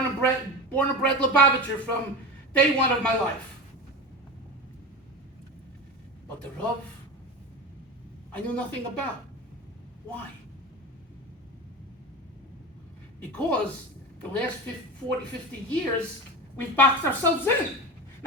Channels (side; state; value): both; normal; correlation 0.25